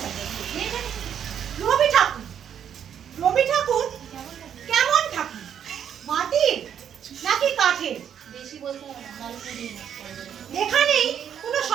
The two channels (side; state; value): left; quieter; 8.8 dB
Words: রবি ঠাকুর, রবি ঠাকুর কেমন ঠাকুর, মাটির নাকি কাঠের? এখানেই কোনো